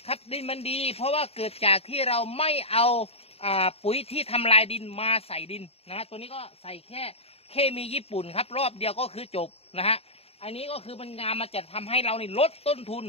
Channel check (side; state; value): right; late; 0.29 ms